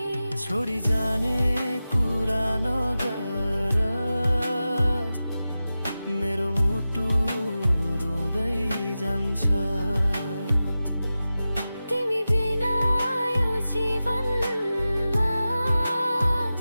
छोडी जाने कुरा नगर, मेरो मुटु रुँदै जान्छ। तिमी बिना यो जीवनमा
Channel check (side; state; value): both; inverted; correlation -0.94